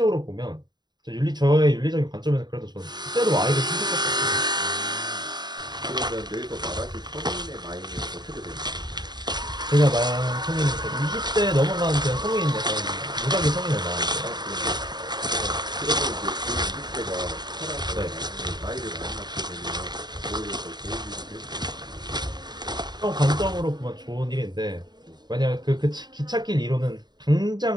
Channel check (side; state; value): left; late; 0.20 ms